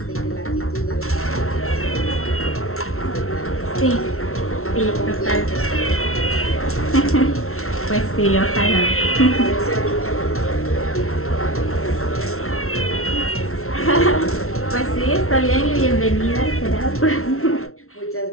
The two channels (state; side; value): late; right; 0.63 ms